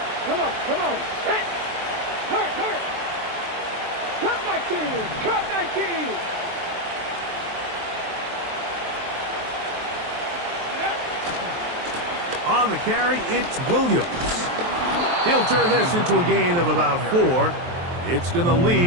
Come on, set. Hurt. Cut my team. On the carry, it's Williams. He'll turn this into a gain of about 4. It's going to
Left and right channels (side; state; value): left; late; 23 ms